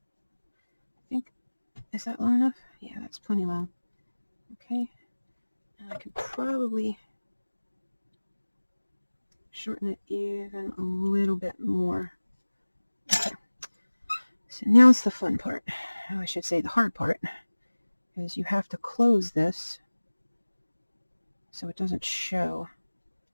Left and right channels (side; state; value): both; inverted; correlation -1.00